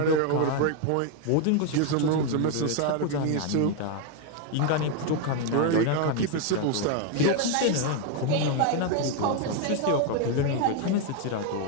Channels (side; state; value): both; different; correlation 0.01